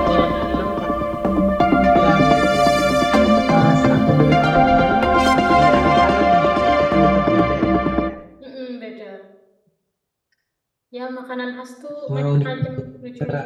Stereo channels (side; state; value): both; identical; correlation 1.00